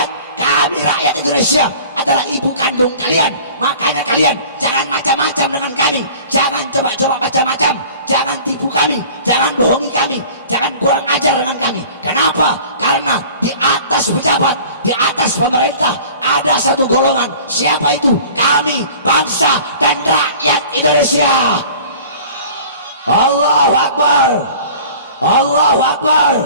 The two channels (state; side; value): inverted; both; correlation -0.45